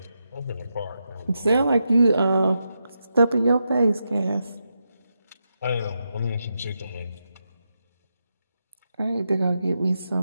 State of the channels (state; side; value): inverted; both; correlation -0.86